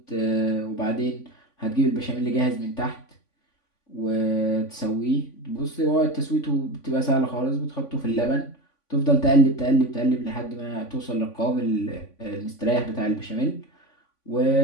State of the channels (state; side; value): late; right; 3.5 ms